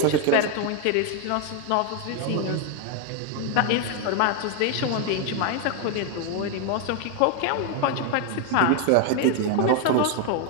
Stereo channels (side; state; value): both; different; correlation 0.01